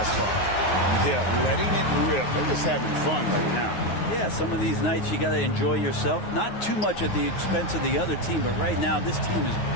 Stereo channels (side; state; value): right; late; 9.4 ms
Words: far. Yeah, letting it rip. They're just having fun right now. Yeah, some of these nights you got to enjoy yourself. Not too much at the expense of the other team, but right now this team is